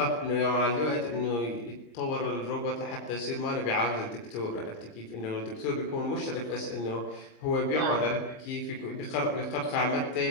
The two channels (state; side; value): late; right; 25 ms